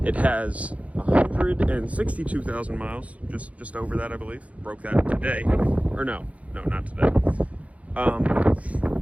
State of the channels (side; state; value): left; late; 0.066 ms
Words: It has 162,000 miles, just over that, I believe. Broke that today, or no, not today.